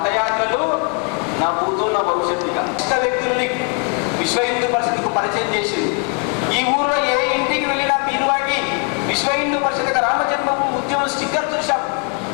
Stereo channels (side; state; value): right; quieter; 37.2 dB